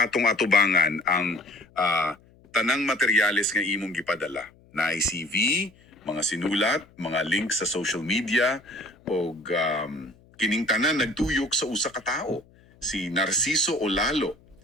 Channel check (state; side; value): noise; left; hum, 28 dB below the sound